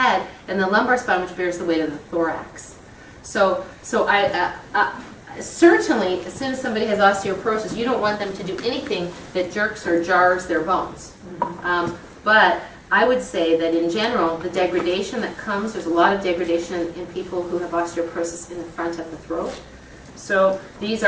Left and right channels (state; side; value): identical; both; correlation 1.00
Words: and the lumbar spine, which bears the weight of the thorax. So I certainly, as soon as somebody has osteoporosis, you don't want them to do anything that jerks or jars their bones. But I would say that in general, the degradation that comes, there's a lot of degradation in people who have osteoporosis in the front of the throat. So these